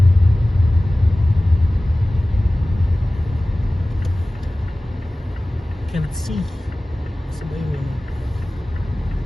Cannot see. Sabay mo naman.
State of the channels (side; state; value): both; normal; correlation 0.97